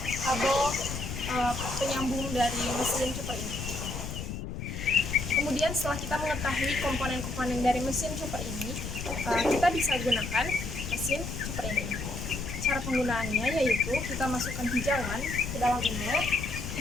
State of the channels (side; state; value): left; noise; rumble, 6 dB below the sound